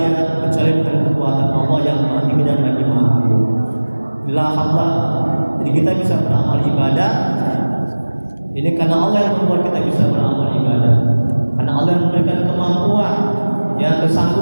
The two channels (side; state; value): both; inverted; correlation -1.00